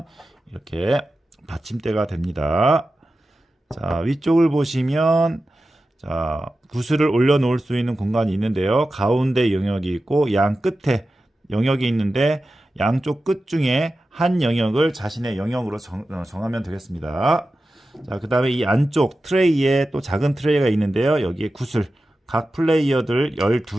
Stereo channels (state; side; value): normal; both; correlation 0.93